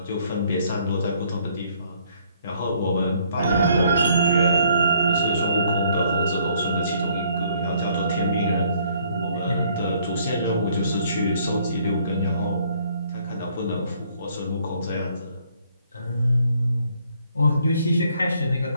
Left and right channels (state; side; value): inverted; both; correlation -0.65